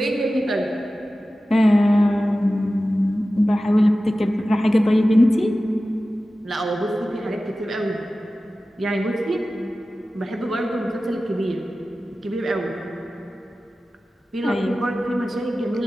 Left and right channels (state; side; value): normal; both; correlation 0.95